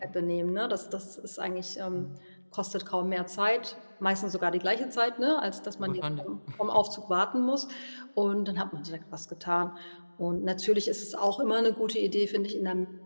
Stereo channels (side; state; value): both; inverted; correlation -1.00